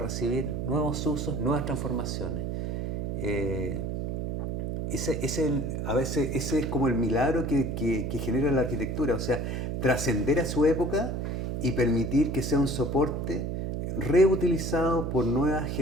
nuevos usos, nuevas transformaciones. A veces ese es como el milagro que genera la arquitectura, o sea, trascender a su época y permitir que sea un soporte reutilizado por nuevas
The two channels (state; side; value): noise; right; hum, 2 dB below the sound